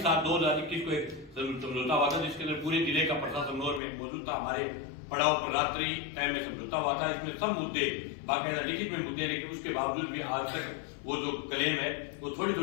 को एक समझौता हुआ था, जिसके अंदर पूरे जिले का प्रशासन में मौजूद था। हमारे पड़ाव पर रात्रि टाइम में समझौता हुआ था। इसमें सब मुद्दे बाकायदा लिखित में मुद्दे, लेकिन उसके बावजूद भी आज तक वो जो क्लेम है वो थोड़ी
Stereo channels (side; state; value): right; drops out; at 3.8 s